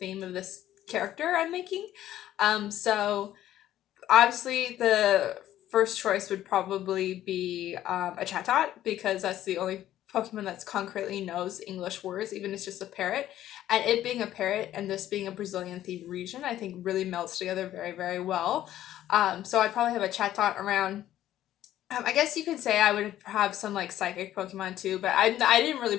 of this character I'm making. So obviously the first choice would probably be a Chatot because that's the only Pokemon that's concretely knows English words, even if it's just a parrot. And it being a parrot and this being a Brazilian themed region, I think really melts together very, very well. So I'd probably have a Chatot around. I guess you could say I would have some like psychic Pokemon too, but I didn't really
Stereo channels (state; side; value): quieter; right; 12.8 dB